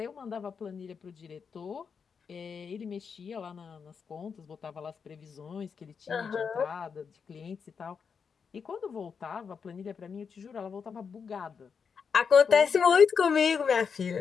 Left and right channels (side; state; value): right; quieter; 6.1 dB